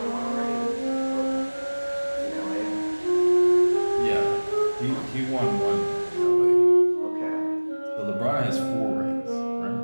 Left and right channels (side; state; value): both; inverted; correlation -1.00